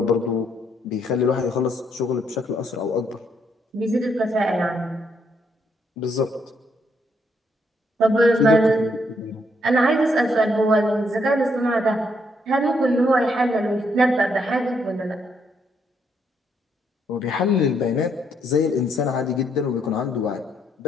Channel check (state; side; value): normal; both; correlation 0.74